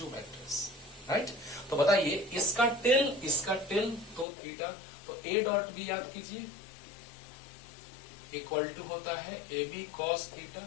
vectors, right. तो बताइए इसका tell तो theta, तो ए dot B याद कीजिए equal to होता है A B cos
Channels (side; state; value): right; drops out; at 4.2 s